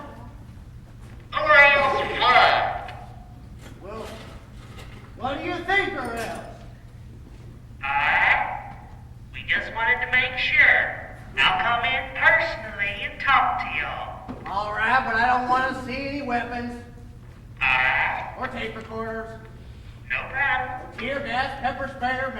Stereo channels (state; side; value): identical; both; correlation 1.00